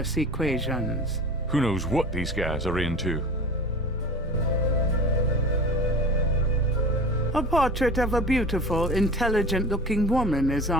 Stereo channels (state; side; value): normal; both; correlation 0.37